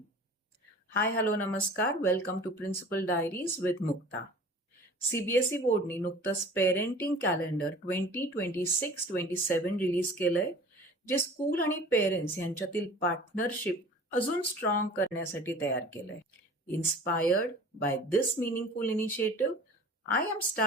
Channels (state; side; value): normal; both; correlation 0.43